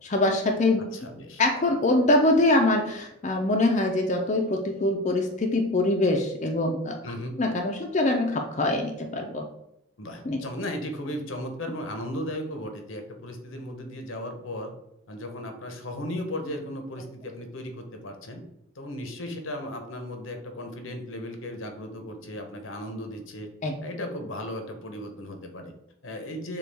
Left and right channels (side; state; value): both; normal; correlation 0.26